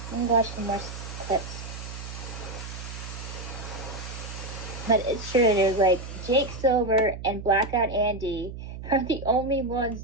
watch some more clips. But it's true, dude. Like, Jake Silver and Blackout Andy are the only ones,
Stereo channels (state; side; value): noise; right; hum, 10 dB below the sound